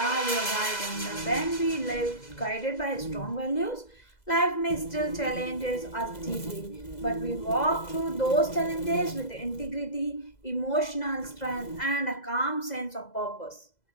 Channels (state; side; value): late; right; 2.0 ms